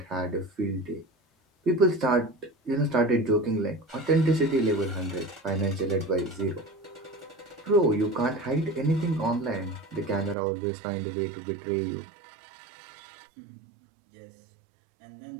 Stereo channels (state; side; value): drops out; left; at 10.4 s